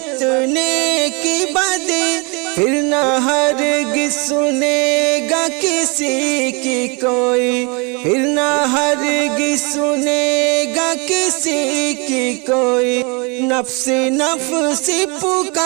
نیکی بدی، پھر نہ ہرگز سنے گا کسی کی کوئی، پھر نہ ہرگز سنے گا کسی کی کوئی، نفس نفس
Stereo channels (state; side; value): quieter; left; 30.5 dB